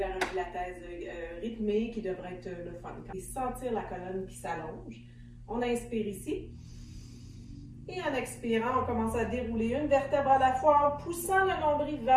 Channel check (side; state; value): both; identical; correlation 1.00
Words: un pilates rythmé qui devrait être le fun. Et sentir la colonne qui s'allonge. On inspire ici. Et en expirant, on commence à dérouler une vertèbre à la fois en poussant le nombril